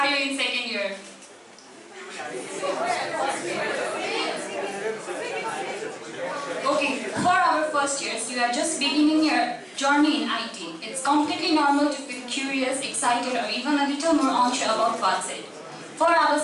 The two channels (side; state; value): both; identical; correlation 1.00